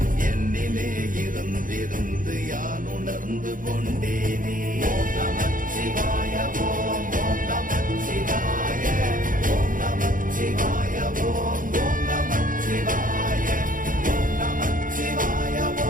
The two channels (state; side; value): late; left; 0.39 ms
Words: என்னிலே இருந்திருந்து யான் உணர்ந்து கொண்டேனே. ஓம் நமச்சிவாய ஓம் ஓம் நமச்சிவாய ஓம் நமச்சிவாய ஓம் ஓம் நமச்சிவாய ஓம் நமச்சிவாய